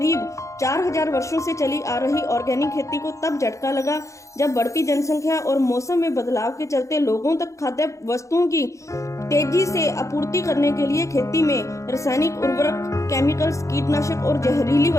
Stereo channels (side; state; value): right; late; 0.15 ms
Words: 4000 वर्षों से चली आ रही ऑर्गेनिक खेती को तब झटका लगा जब बढ़ती जनसंख्या और मौसम में बदलाव के चलते लोगों तक खाद्य वस्तुओं की तेजी से आपूर्ति करने के लिए खेती में रासायनिक उर्वरक, केमिकल्स, कीटनाशक और जहरीली